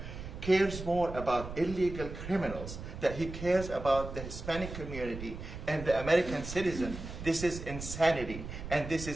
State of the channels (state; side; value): noise; right; rumble, 9 dB below the sound